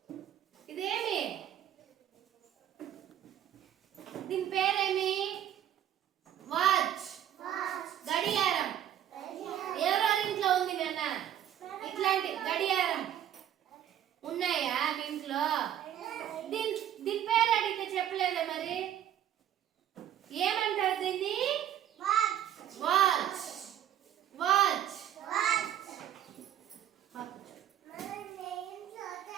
Idemi. Din peremi. Watch. Watch. గడియారం. ఎవరెవరి ఇంట్లో ఉంది నాన్న? ఇట్లాంటి గడియారం ఉన్నాయా మీ ఇంట్లో? దీని పేరు అడిగితే చెప్పలేదా మరి? ఏమంటారు దీన్ని? Watch. వాచ్. వాచ్. Watch.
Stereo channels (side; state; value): left; quieter; 10.8 dB